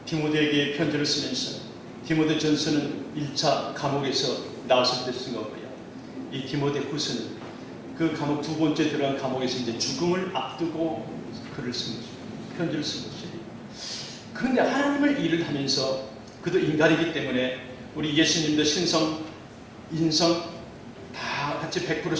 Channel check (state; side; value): identical; both; correlation 1.00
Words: 디모데에게 편지를 쓰면서 디모데 전서는 1차 감옥에서 나왔을 때 쓴 거고요. 이 디모데 후서는 그 감옥 두 번째 들어간 감옥에서 이제 죽음을 앞두고 글을 쓴 거죠. 편지를 쓴 거죠. 그런데 하나님을 일을 하면서 그도 인간이기 때문에 우리 예수님도 신성, 인성 다 같이